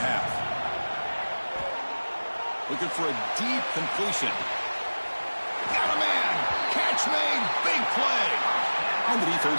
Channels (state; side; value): inverted; both; correlation -1.00